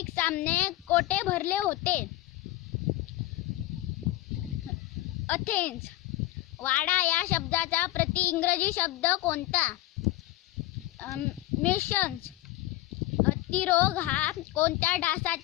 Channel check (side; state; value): right; quieter; 16.8 dB